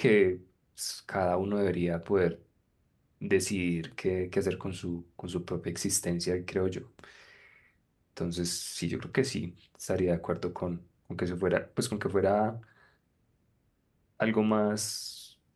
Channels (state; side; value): identical; both; correlation 1.00